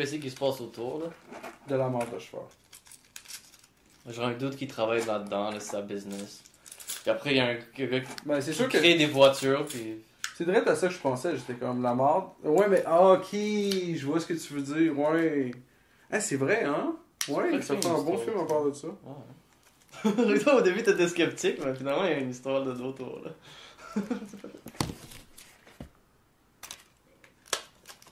qui se passent autour, là. De la marde de cheval. Genre un doute qui travaille là-dedans, là, c'est sa business. Puis après, il y a un gars Ben, c'est qui sûr que... crée des voitures, puis... C'est direct à ça que je pensais, j'étais comme la marde. Ouais, mais ok, je vois ce que tu veux dire, ouais. Ah, c'est vrai, hein? Ouais, ça fait un bon film à part de ça. Ouais. Toi, au début, t'étais sceptique, mais finalement, il y a une histoire de d'auto, là.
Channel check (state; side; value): identical; both; correlation 1.00